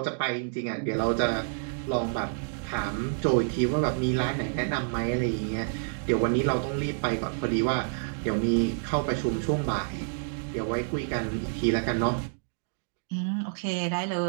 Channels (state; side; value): silent; left; digital silence